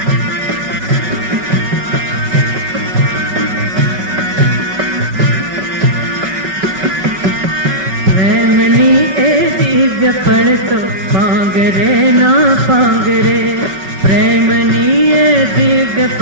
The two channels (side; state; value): left; late; 5.3 ms